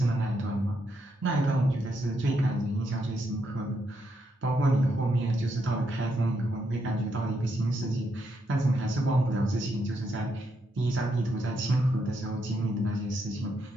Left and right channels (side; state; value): both; normal; correlation 0.79